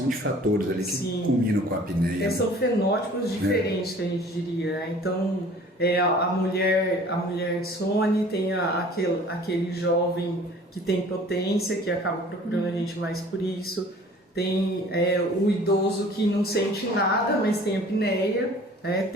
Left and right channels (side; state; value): both; normal; correlation 0.49